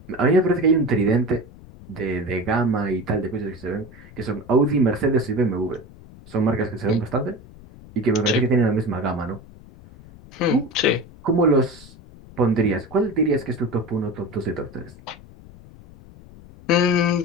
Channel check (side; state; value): left; noise; rumble, 20 dB below the sound